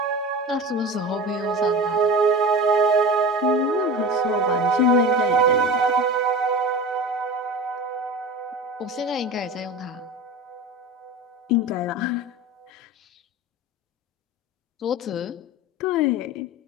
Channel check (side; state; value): both; normal; correlation 0.32